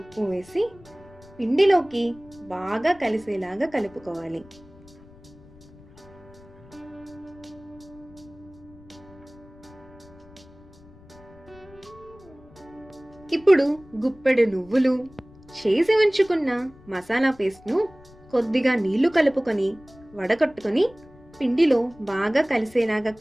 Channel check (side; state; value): left; noise; rumble, 24 dB below the sound